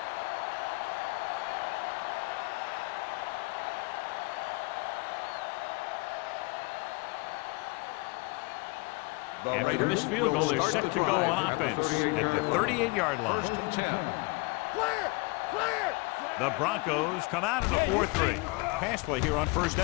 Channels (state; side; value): quieter; right; 27.2 dB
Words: After the missed field goal, they're set to go on offense at the 38-yard line. Clear! Clear! The Broncos come out in a 4-3. Pass play here on first